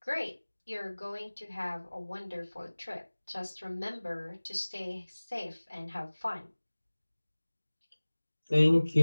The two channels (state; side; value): inverted; both; correlation -1.00